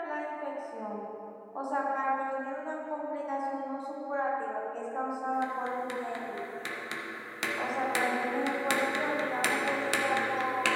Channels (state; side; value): identical; both; correlation 1.00